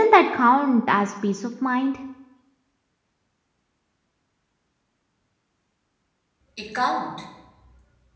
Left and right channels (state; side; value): identical; both; correlation 1.00